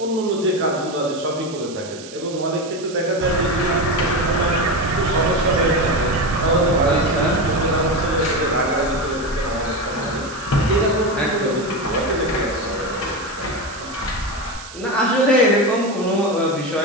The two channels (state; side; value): noise; right; hiss, 16 dB below the sound